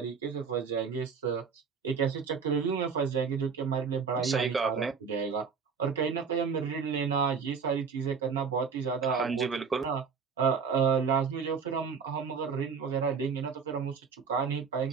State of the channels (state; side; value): quieter; left; 5.9 dB